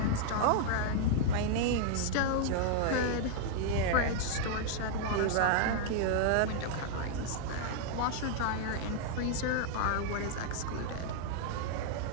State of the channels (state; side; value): different; both; correlation -0.01